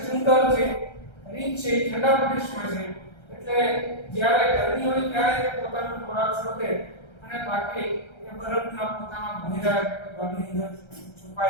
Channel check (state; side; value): late; right; 1.3 ms